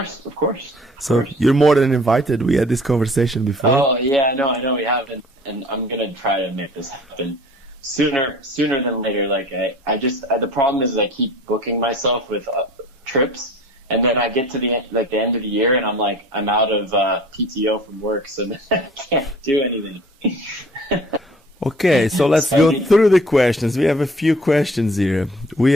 So you're more than invited. We had this conversation before. Oh yeah, no, I know we haven't, and I'm gonna try to make this happen sooner than later. Like I just the problem is I keep booking myself with trips, and then I get to the end of the year, and I'm out of PTO from work, so then I can't do anything. Okay, so let's go through the questions. We have a few questions here. We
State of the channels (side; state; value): both; normal; correlation 0.47